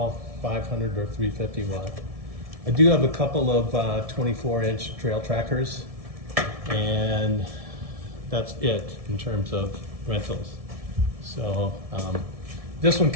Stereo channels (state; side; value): late; left; 1.7 ms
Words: 500 or 350 watt. I do have a couple of 24-inch trail trackers, and that's it in terms of rentals. So this one